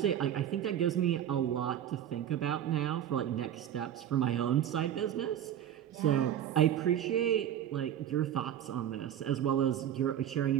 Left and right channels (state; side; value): quieter; left; 10.5 dB